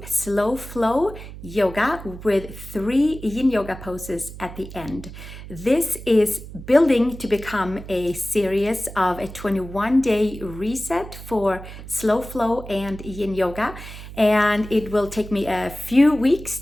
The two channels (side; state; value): right; noise; hum, 13 dB below the sound